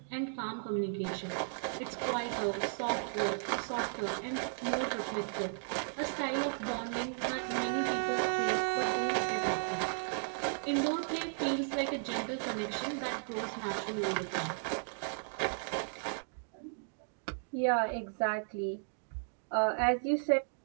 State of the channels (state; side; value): silent; left; digital silence